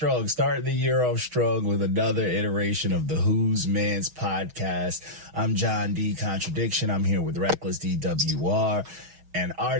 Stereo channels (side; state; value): left; late; 6.4 ms